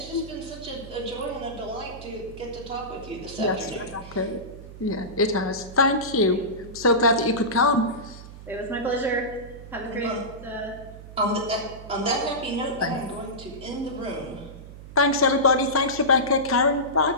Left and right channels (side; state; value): right; noise; hum, 15 dB below the sound